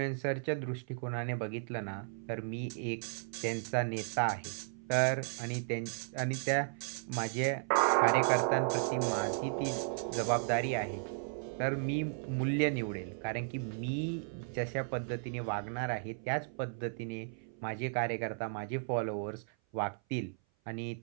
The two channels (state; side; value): silent; left; 54 dB below the other